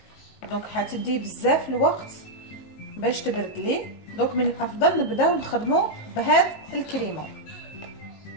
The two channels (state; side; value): late; right; 19 ms